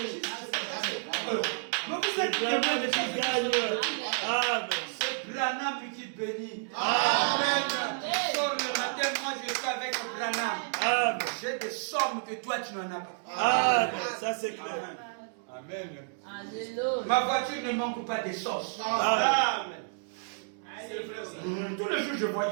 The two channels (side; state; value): left; silent; digital silence